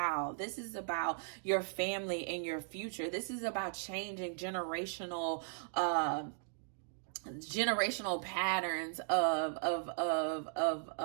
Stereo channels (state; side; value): silent; left; digital silence